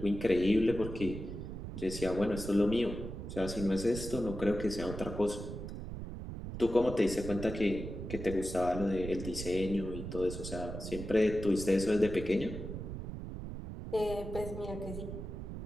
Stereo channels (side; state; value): right; noise; rumble, 8 dB below the sound